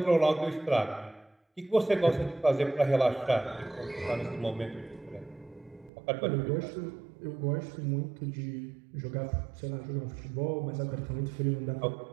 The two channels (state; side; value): drops out; left; at 5.9 s